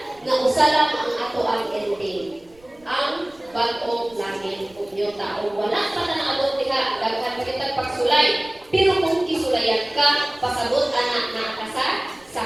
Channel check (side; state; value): right; noise; rumble, 29 dB below the sound